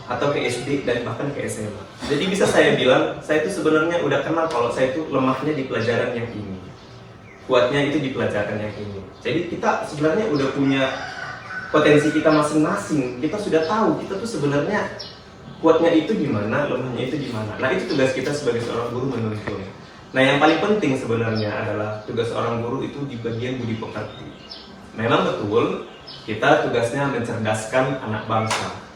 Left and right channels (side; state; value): both; identical; correlation 1.00